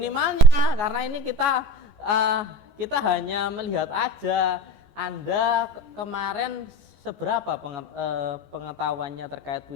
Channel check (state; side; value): late; left; 14 ms